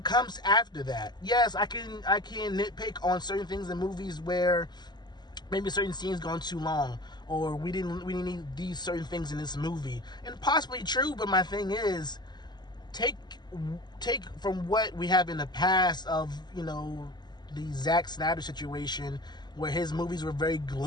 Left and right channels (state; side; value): late; right; 0.21 ms